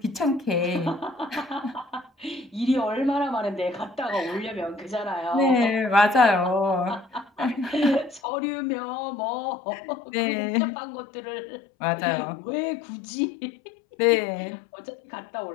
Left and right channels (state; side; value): drops out; right; at 8.2 s